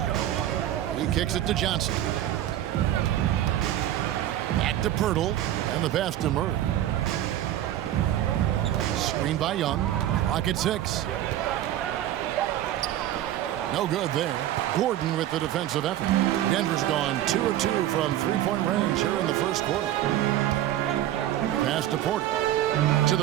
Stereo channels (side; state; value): left; quieter; 12.7 dB